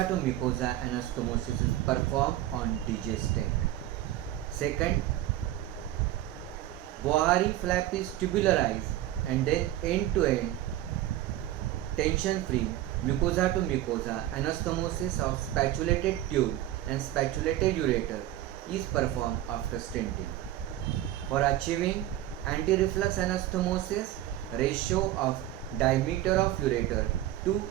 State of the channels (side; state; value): left; quieter; 13.8 dB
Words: to mucosa anastomosis is performed on DJ stent. Second, Bohari flap is tubularized and then end to end tension free mucosa to mucosa anastomosis of spatulated tube and spatulated ureter is performed after stenting. For achieving anti-reflux anastomosis, ratio of diameter of ureter to